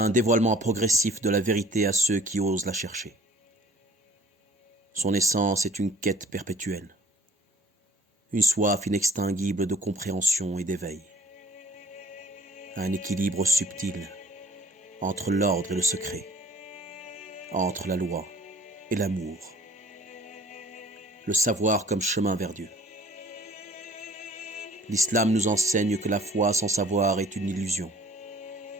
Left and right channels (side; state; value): both; normal; correlation 0.52